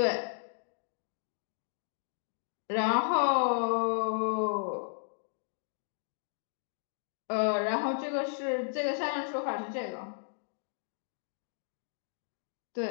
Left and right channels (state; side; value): silent; right; digital silence